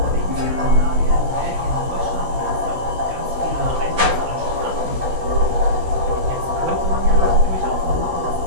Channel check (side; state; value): left; late; 16 ms